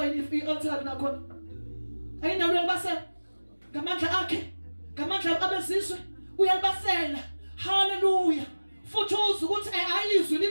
i-altar nakhona. Ayinawo uyalibasela ngamandla akhe, ngamandla abezizwe uyalibasela. Hallelujah. Futhi uzwe ukuthi ayizwi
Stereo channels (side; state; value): both; inverted; correlation -1.00